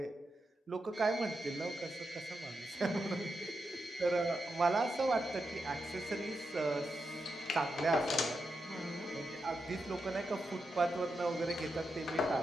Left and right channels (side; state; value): both; normal; correlation 0.86